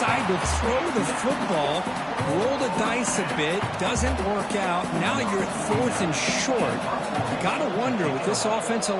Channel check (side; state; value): both; identical; correlation 1.00